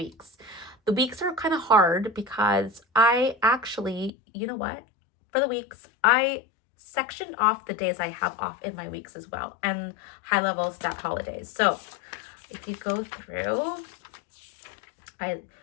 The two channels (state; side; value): drops out; right; at 4.1 s